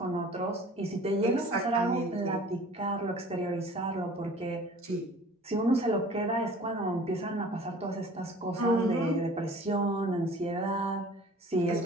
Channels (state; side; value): normal; both; correlation 0.47